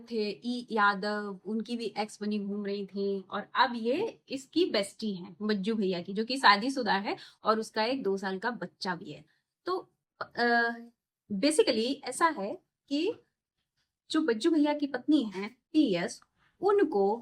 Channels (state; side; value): identical; both; correlation 1.00